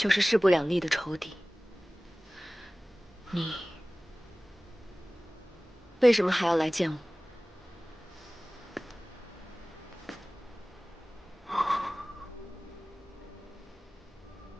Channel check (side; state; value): both; normal; correlation 0.98